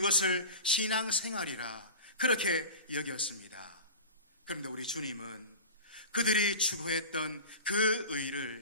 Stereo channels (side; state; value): both; inverted; correlation -0.33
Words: 신앙생활이라 그렇게 여겼습니다. 그런데 우리 주님은 그들이 추구했던 그